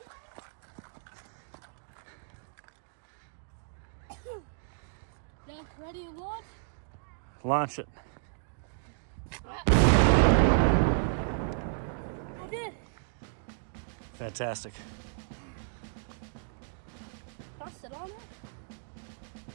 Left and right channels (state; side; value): silent; left; digital silence